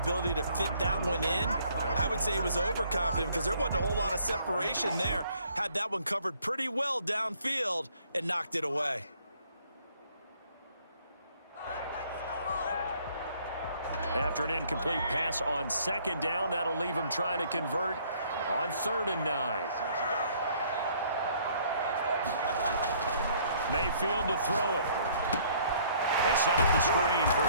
to fit that one in. I would say he was overconfident because there wasn't a whole lot of separation there. Had that one covered pretty well downfield and knocked it away. After an incomplete pass on 2nd down, that'll leave him trying to convert on 3rd and 9. Mayfield to throw it. They set up the screen for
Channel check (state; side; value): inverted; both; correlation -0.62